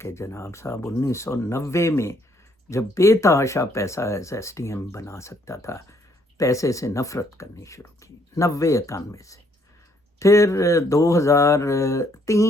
کہ جناب صاحب 1990 میں جب بے تحاشا پیسہ ایس ٹی ایم بنا سکتا تھا، پیسے سے نفرت کرنی شروع کی 90-91 سے۔ پھر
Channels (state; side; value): normal; both; correlation 0.68